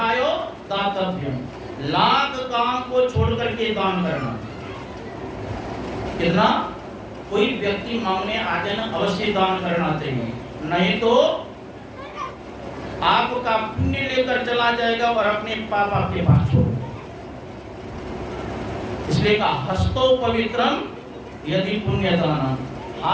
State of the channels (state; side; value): identical; both; correlation 1.00